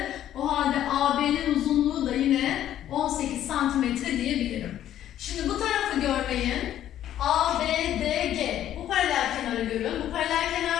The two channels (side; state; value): right; quieter; 11.6 dB